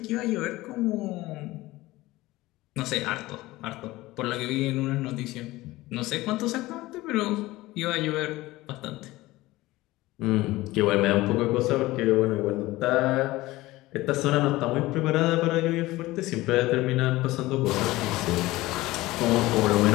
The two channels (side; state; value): right; quieter; 18.6 dB